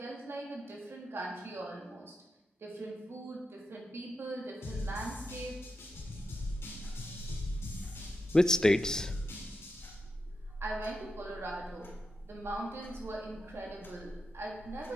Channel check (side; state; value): both; normal; correlation 0.87